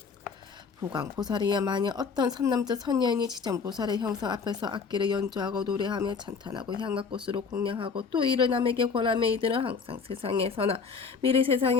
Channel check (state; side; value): quieter; right; 5.4 dB